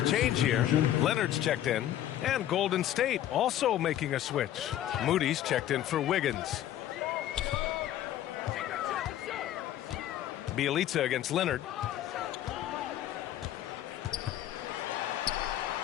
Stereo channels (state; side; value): quieter; right; 12.1 dB